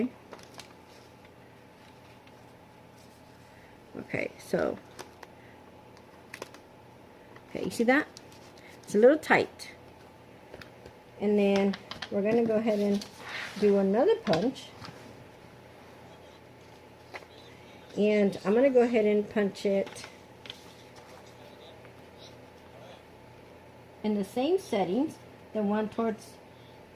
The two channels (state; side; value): identical; both; correlation 1.00